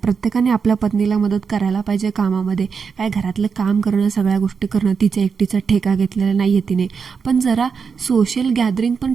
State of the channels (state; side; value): quieter; left; 5.8 dB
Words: आपल्या पत्नीला मदत करायला पाहिजे कामामध्ये. काय घरातलं काम करणं, सगळ्या गोष्टी करणं, तिच्या एकटीचा ठेका घेतलेला नाही आहे तिने. पण जरा सोशल गॅदरिंग पण